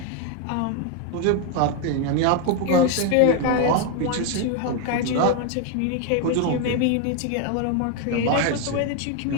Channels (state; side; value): different; both; correlation 0.01